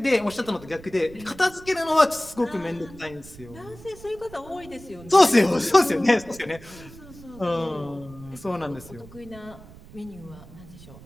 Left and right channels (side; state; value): right; noise; rumble, 19 dB below the sound